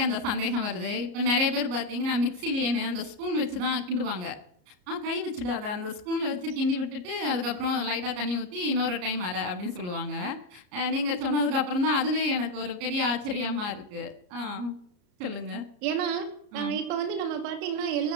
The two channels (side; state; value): left; late; 34 ms